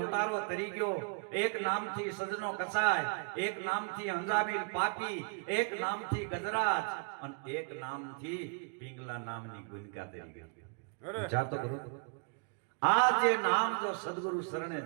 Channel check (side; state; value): left; quieter; 38.9 dB